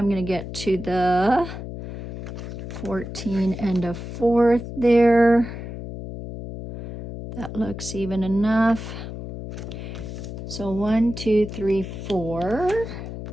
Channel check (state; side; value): noise; left; hum, 9 dB below the sound